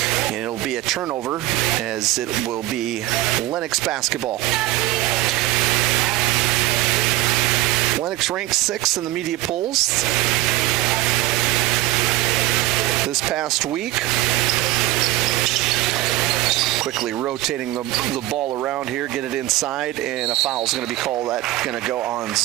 And it'll be a turnover as it will be Lennox basketball. Lennox ranks 6th in the media polls this past week. Quickly rotating the ball around here, get it inside, and a foul is going to be called. That's going to go on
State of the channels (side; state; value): left; quieter; 17.1 dB